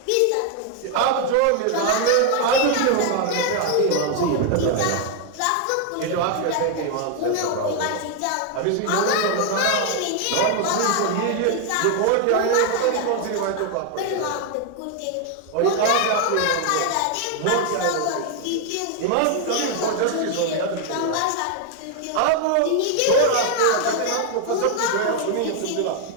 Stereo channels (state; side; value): different; both; correlation 0.01